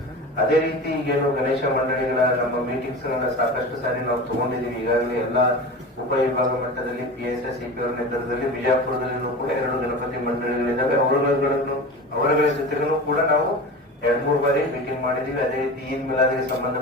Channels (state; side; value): normal; both; correlation 0.31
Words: ಅದೇ ರೀತಿ ಈಗೇನು ಗಣೇಶ ಮಂಡಳಿಗಳ ನಮ್ಮ ಮೀಟಿಂಗ್ಸ್ ಗಳನ್ನ ಸಾಕಷ್ಟು ಸಾರಿ ನಾವು ತಗೊಂಡಿದೀವಿ. ಈಗಾಗಲೇ ಎಲ್ಲಾ ಉಪವಿಭಾಗ ಮಟ್ಟದಲ್ಲಿ PSI CP ಅವರ ನೇತೃತ್ವದಲ್ಲಿ ಬಿಜಾಪುರದಲ್ಲಿನೂ ಕೂಡ 2 ಗಣಪತಿ ಮಂಡಳಿಗಳಿದ್ದಾವೆ. ಅವರುಗಳ ಜೊತೆಗೂ ಕೂಡ ನಾವು 2-3 ಬಾರಿ ಮೀಟಿಂಗ್ ಮಾಡಿದೀವಿ. ಅದೇ ರೀತಿ ಈದ್ ಮಿಲಾದಿಗೆ